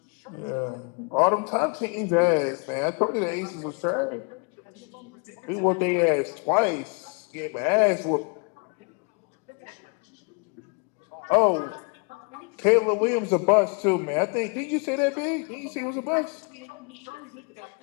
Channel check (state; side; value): quieter; right; 36.2 dB